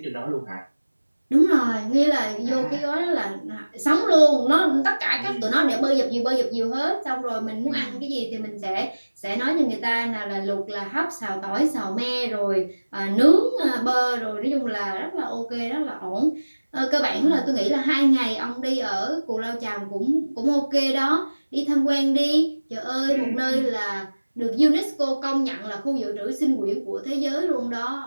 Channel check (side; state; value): both; inverted; correlation -1.00